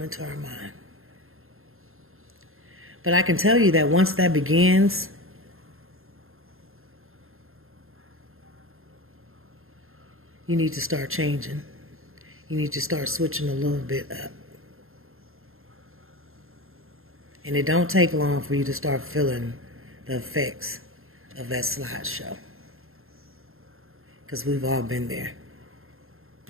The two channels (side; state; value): left; late; 0.61 ms